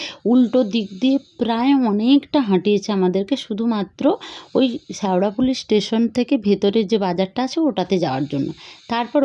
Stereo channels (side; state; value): both; identical; correlation 1.00